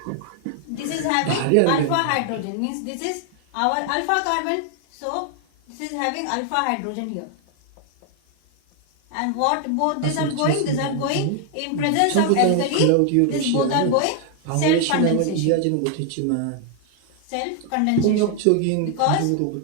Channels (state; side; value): different; both; correlation 0.00